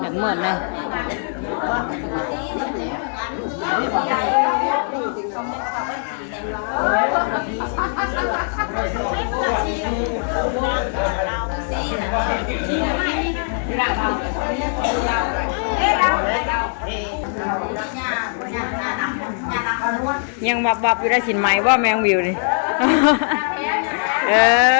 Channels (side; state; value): right; silent; 62 dB below the other